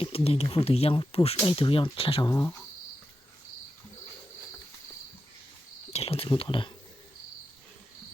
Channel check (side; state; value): both; normal; correlation 0.89